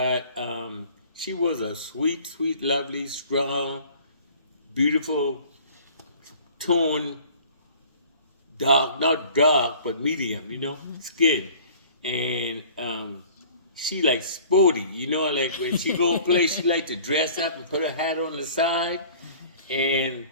she was a sweet, sweet, lovely, strong, beautiful tone, dark, not dark, but medium, you know, skin. And she like sporty, you know, like when she go play, she like to dress up and put her hat on the side. And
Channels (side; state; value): both; inverted; correlation -0.49